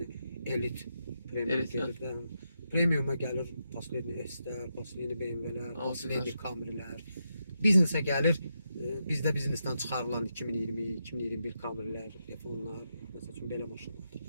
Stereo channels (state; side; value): inverted; both; correlation -0.84